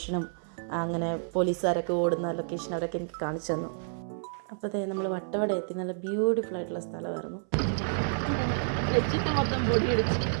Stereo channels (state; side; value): silent; left; 58 dB below the other